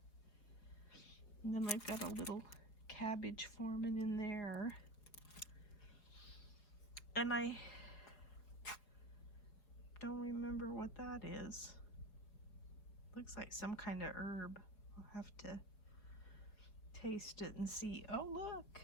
And then I've got a little cabbage forming in there. And I don't remember what that is. Looks like some kind of herb. I'll have to taste it and see. Oh, look.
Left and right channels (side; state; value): right; late; 4.6 ms